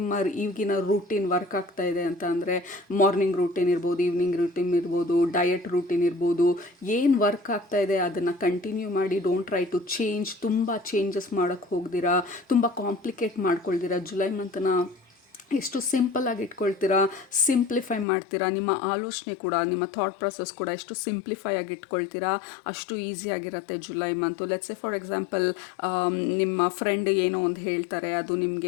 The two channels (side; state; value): right; drops out; at 18.1 s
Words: ಈಗಿನ ರೂಟೀನ್ ವರ್ಕ್ ಆಗ್ತಾ ಇದೆ ಅಂತ ಅಂದರೆ, ಮಾರ್ನಿಂಗ್ ರೂಟೀನ್ ಇರ್ಬೋದು, ಈವ್ನಿಂಗ್ ರೂಟೀನ್ ಇರ್ಬೋದು, ಡಯಟ್ ರೂಟೀನ್ ಇರ್ಬೋದು, ಏನು ವರ್ಕ್ ಆಗ್ತಾ ಇದೆ ಅದನ್ನು ಕಂಟಿನ್ಯೂ ಮಾಡಿ. Don't try to change. ತುಂಬ ಚೇಂಜಸ್ ಮಾಡೋಕ್ಕೆ ಹೋಗ್ದಿರಾ, ತುಂಬ ಕಾಂಪ್ಲಿಕೇಟ್ ಮಾಡ್ಕೊಳ್ದಿರಾ. ಜುಲೈ ಮಂತನ ಎಷ್ಟು ಸಿಂಪಲ್ಲಾಗಿ ಇಟ್ಕೊಳ್ತೀರಾ, ಸಿಂಪ್ಲಿಫೈ ಮಾಡ್ತೀರಾ. ನಿಮ್ಮ ಆಲೋಚನೆ ಕೂಡ, ನಿಮ್ಮ ಥಾಟ್ ಪ್ರೊಸೆಸ್ ಕೂಡ ಎಷ್ಟು ಸಿಂಪ್ಲಿಫೈ ಆಗಿ ಇಟ್ಕೊಳ್ತೀರಾ ಅಷ್ಟು ಈಸಿಯಾಗಿರುತ್ತೆ July month. Let's say for example, ನಿಮ್ಮ ಫ್ರೆಂಡ್ ಏನೋ ಒಂದು ಹೇಳ್ತಾರೆ, ಅದು